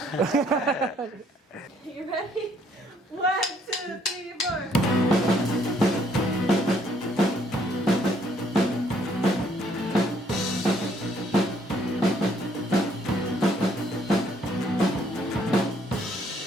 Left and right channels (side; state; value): both; normal; correlation 0.66